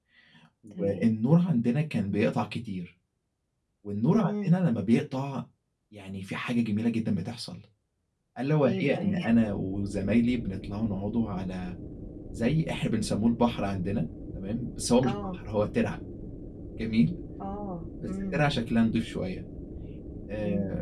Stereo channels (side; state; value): both; identical; correlation 1.00